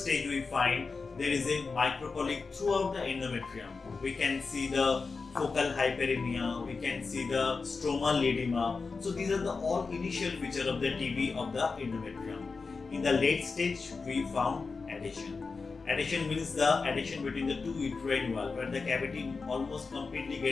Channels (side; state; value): right; quieter; 4.5 dB